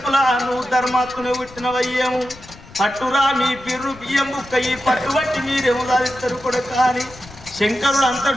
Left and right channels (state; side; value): noise; left; rumble, 20 dB below the sound